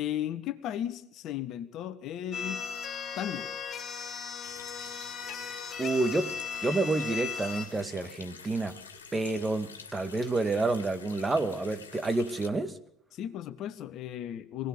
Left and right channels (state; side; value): normal; both; correlation 0.74